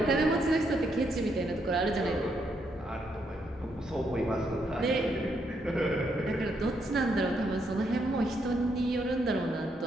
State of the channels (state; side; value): normal; both; correlation 0.77